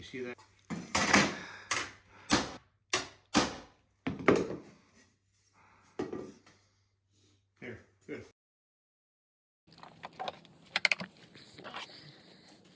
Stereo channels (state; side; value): identical; both; correlation 1.00